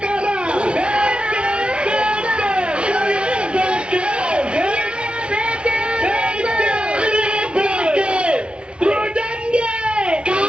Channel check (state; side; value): late; left; 0.057 ms